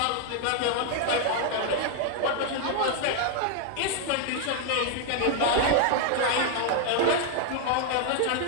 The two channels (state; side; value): different; both; correlation 0.00